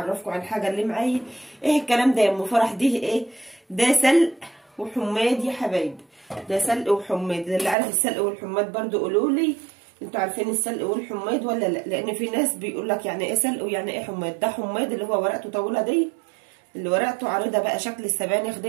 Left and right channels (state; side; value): drops out; left; at 7.8 s